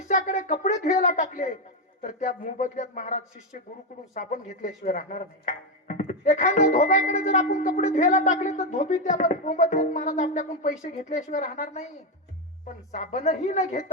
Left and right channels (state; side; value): normal; both; correlation 0.07